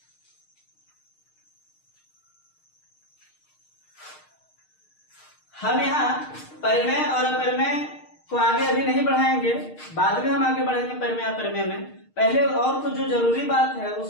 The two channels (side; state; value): right; late; 6.5 ms